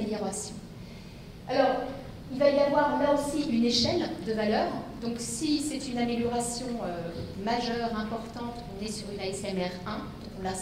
Alors, il va y avoir là aussi une échelle de valeur. Donc si c'est une amélioration majeure, importante, on est sur une ASMR 1. Donc là,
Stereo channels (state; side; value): identical; both; correlation 1.00